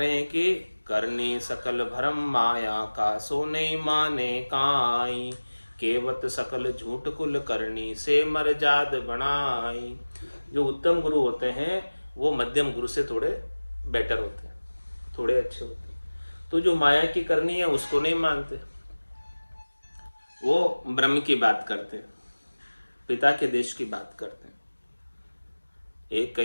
हैं कि करनी सकल भरम माया का, सो नहीं माने काई, केवत सकल झूठ कुल करनी, से मर जाद बनाई। जो उत्तम गुरु होते हैं वो मध्यम गुरु से थोड़े बेटर होते हैं, थोड़े अच्छे होते हैं। तो जो माया की करनी है उसको नहीं मानते, वो ब्रह्म की बात करते हैं, पिता के देश की बात करते हैं। एक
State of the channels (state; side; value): inverted; both; correlation -1.00